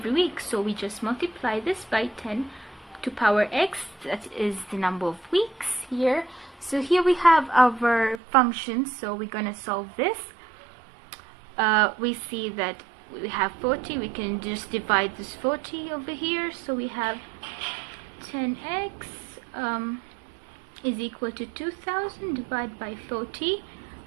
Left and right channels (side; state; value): left; drops out; at 8.2 s